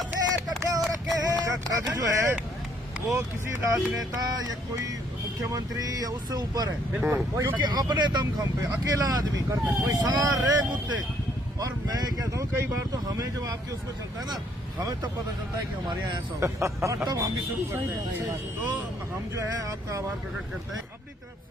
पद जो है वो किसी राजनेता या कोई मुख्यमंत्री या उससे ऊपर है, क्योंकि अपने दमखम पे अकेला आदमी सारे मुद्दे। और मैं कहता हूँ कई बार तो हमें जब आपके उसमें चलता है ना, हमें तब पता चलता है कि हमारे यहाँ ऐसा होगा, और तब हम भी शुरू करते हैं। तो हम जो है आपका आभार प्रकट करते हैं। अपनी तरफ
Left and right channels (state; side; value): normal; both; correlation 0.66